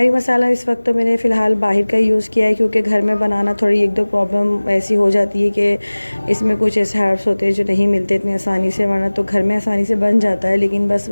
मसाला इस वक्त तो मैंने फ़िलहाल बाहर का यूज़ किया है क्योंकि घर में बनाना थोड़ी 1-2 प्रॉब्लम ऐसी हो जाती है कि इसमें कुछ ऐसे हर्ब्स होते हैं जो नहीं मिलते इतनी आसानी से, वरना तो घर में आसानी से बन जाता है। लेकिन बस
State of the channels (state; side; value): inverted; both; correlation -1.00